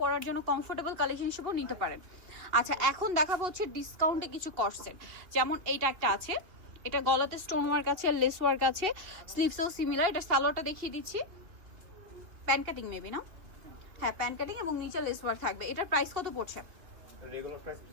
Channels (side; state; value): left; late; 3.0 ms